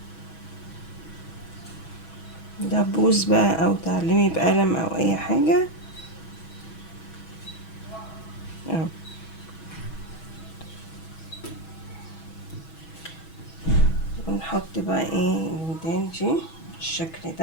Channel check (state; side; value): late; right; 6.2 ms